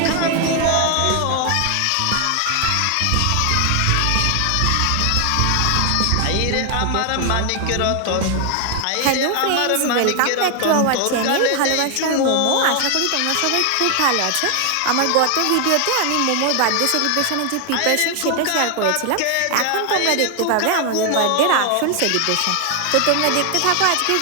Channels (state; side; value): different; both; correlation 0.00